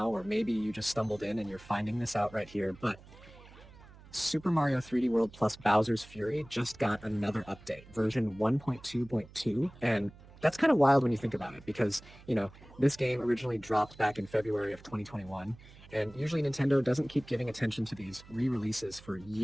or maybe you just stumbled in and you're finding this out right here, but Super Mario 3D World plus Bowser's Fury just got another update, version 1.2.2, and that's kind of wild when you think about it because, this game originally dropped back in February of 2021, and usually Nintendo doesn't keep giving attention to these re-releases for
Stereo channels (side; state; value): right; noise; hum, 21 dB below the sound